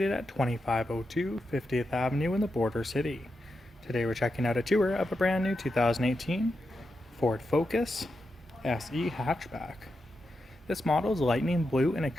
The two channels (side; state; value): both; normal; correlation 0.87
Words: at 2502 50th Avenue in the Border City. Today we're checking out a tour of a brand new 2018 Ford Focus SE hatchback. This model is lightning blue in